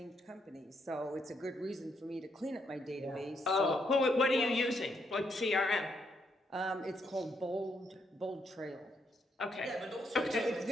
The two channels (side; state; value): both; normal; correlation 0.76